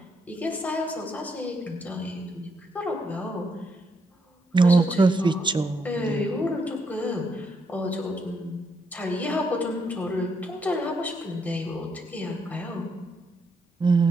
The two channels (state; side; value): normal; both; correlation 0.77